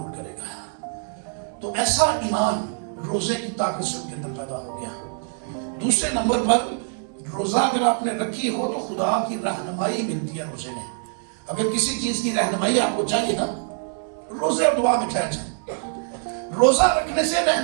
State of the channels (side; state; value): left; silent; 58 dB below the other